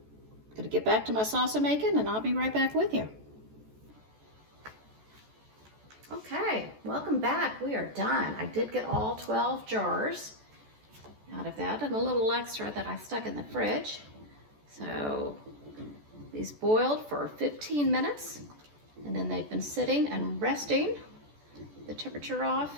going to get back to my salsa making, and I'll be right back with you. Okay, welcome back. We are done. I did get all 12 jars out of that, and a little extra that I stuck in the fridge. So these boiled for 15 minutes, and then they've been sitting and resting, the temperature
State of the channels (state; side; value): late; left; 14 ms